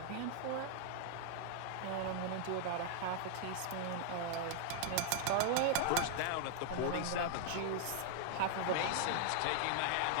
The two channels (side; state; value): both; different; correlation 0.00